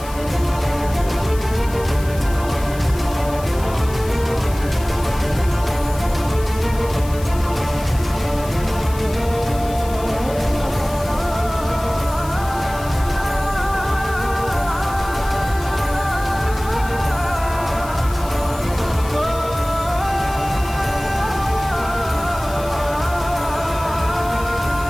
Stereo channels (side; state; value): left; noise; hiss, 16 dB below the sound